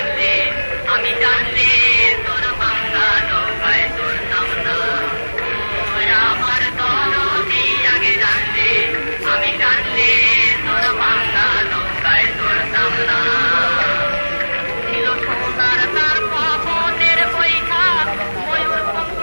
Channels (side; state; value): both; inverted; correlation -1.00